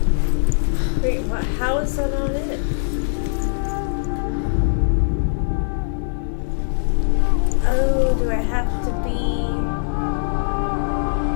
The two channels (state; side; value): silent; right; 63 dB below the other